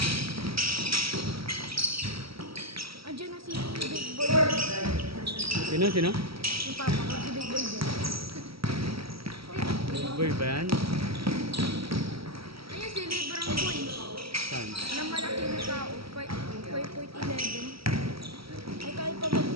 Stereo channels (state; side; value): late; left; 0.75 ms